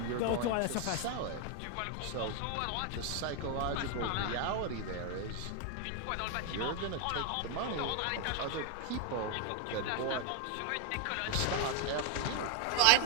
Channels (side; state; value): both; different; correlation 0.01